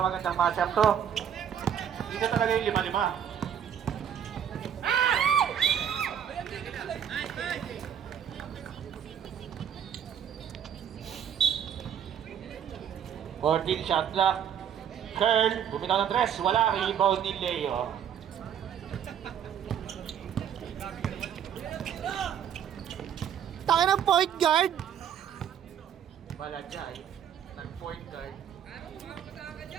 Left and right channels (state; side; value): quieter; left; 8.9 dB